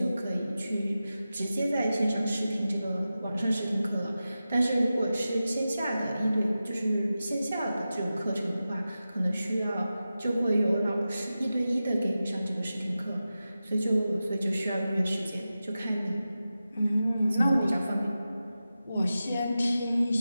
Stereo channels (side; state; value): both; inverted; correlation -0.93